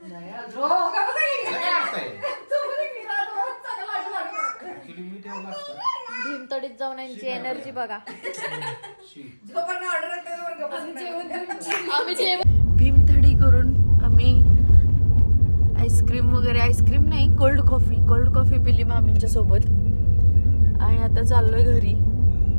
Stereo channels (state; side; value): inverted; both; correlation -1.00